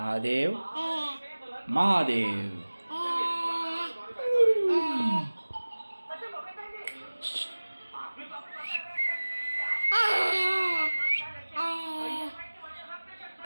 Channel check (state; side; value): inverted; both; correlation -1.00